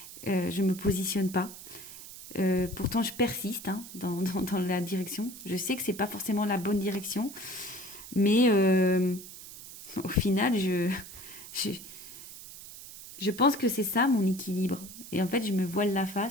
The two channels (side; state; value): right; noise; hiss, 14 dB below the sound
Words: Je me positionne pas. Pourtant, je persiste dans la direction. Je sais que c'est pas forcément la bonne direction, mais au final, je, je pense que c'est ça mon équilibre. Et en fait, je me voile la